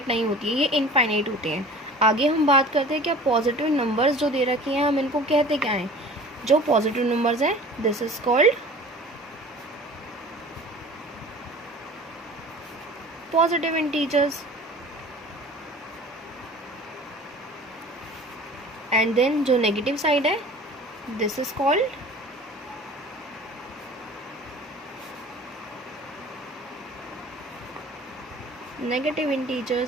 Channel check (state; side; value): normal; both; correlation 0.43